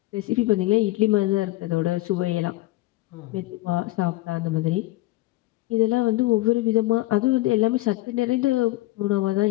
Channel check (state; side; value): quieter; right; 18.7 dB